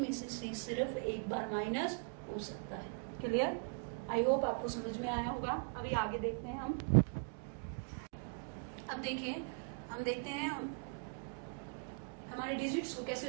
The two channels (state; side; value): quieter; left; 38.6 dB